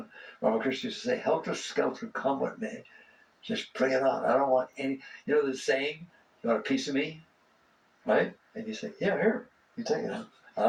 Ramakrishna used to say, helter skelter, come with me. Just bring it on. I don't want any, the saying, you want a piece of me? Right? And you say, yeah, here, you take it.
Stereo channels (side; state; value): both; identical; correlation 1.00